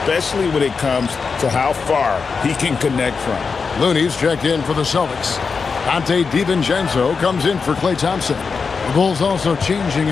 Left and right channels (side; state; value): right; quieter; 5.1 dB